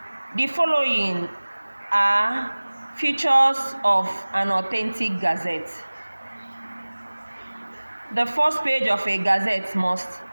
The following are features of an authentic gazette. The first page of a gazette must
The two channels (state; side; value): inverted; both; correlation -1.00